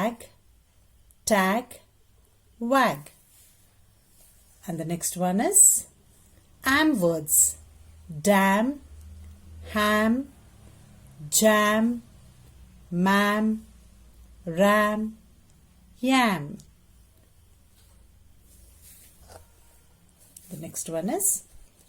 tag, wag. And the next one is am words. Dam, ham, jam, mam, ram, yam. The next one is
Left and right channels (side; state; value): both; identical; correlation 1.00